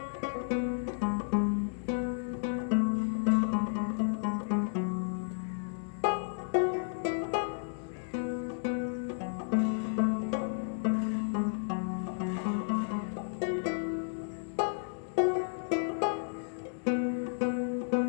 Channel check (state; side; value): silent; right; digital silence